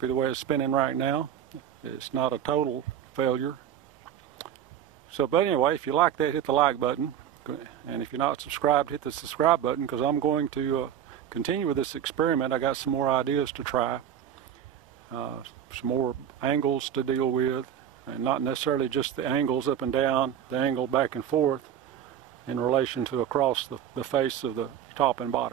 the way it's spinning right now. It's not a total failure. So, but anyway, if you like that, hit the like button. And if you're not subscribed, hit the subscribe button, because I'm going to continue with this experiment. I got some more ideas to try, some more angles to deal with, and not necessarily just the angles up and down, the angle back and forth in relation to across the face of the top and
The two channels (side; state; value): left; quieter; 9.8 dB